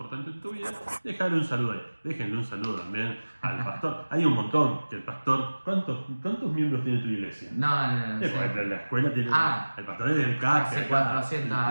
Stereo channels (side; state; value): both; inverted; correlation -1.00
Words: en tu vida, dejarle un saludo ahí. Déjenle un saludo también al pastor. Hay un montón, que el pastor, ¿cuántos miembros tiene tu iglesia? No. La escuela tiene, el pastor es del CAC, hace 400